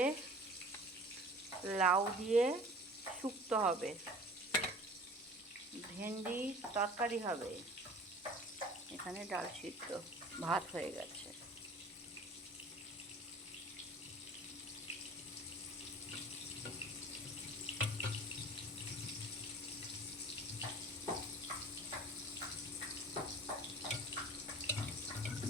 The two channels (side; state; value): both; normal; correlation 0.45